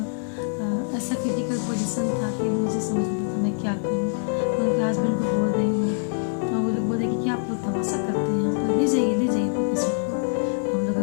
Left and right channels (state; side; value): silent; right; 55 dB below the other